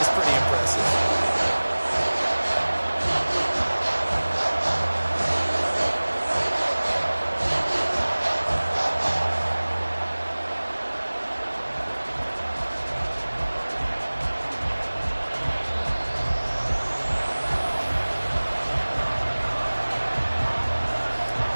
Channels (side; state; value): both; inverted; correlation -1.00